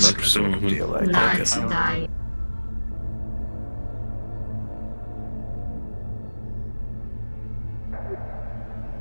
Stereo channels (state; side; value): inverted; both; correlation -1.00